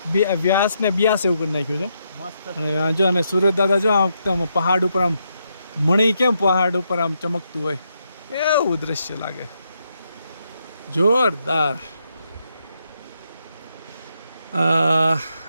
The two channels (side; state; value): both; inverted; correlation -0.80